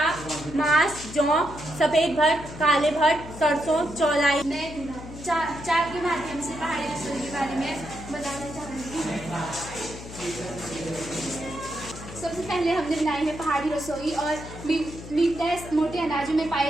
मांस, जौ, सफेद भट्ट, काले भट्ट, सरसों, चौलाई। मैं चार के माध्यम से पहाड़ी रसोई के बारे में बताना चाहूंगी। सबसे पहले हमने बनाई है पहाड़ी रसोई और मीटनेस मोटे अनाजों में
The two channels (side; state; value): left; noise; hum, 13 dB below the sound